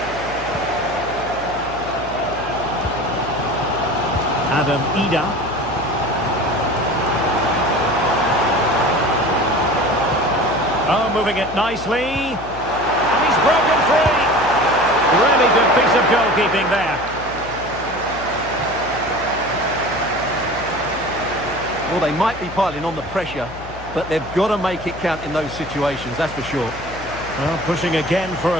Adam Ida. Oh, moving it nicely. And he's broken free. Really good piece of goalkeeping there. Well, they might be piling on the pressure, but they've got to make it count in those situations, that's for sure. Well, pushing again for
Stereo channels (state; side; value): noise; left; hum, 15 dB below the sound